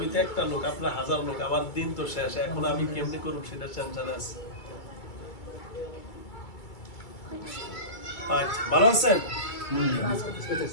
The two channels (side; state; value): right; late; 2.3 ms